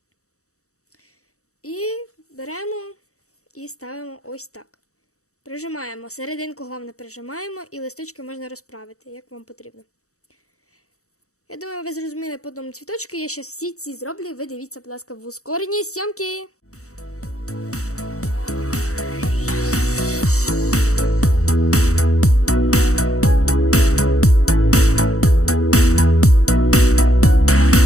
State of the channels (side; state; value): right; late; 0.65 ms